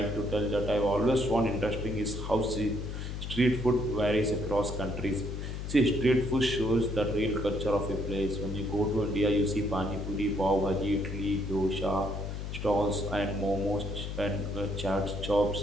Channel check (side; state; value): left; noise; hum, 6 dB below the sound